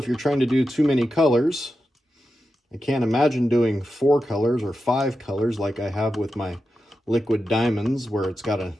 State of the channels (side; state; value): both; normal; correlation 0.90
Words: you're trying to do too many colors. I can't imagine doing 4 colors or 5 colors like I have with my liquid diamonds, where it's got a